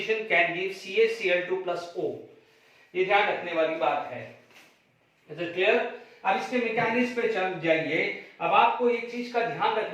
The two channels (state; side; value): identical; both; correlation 1.00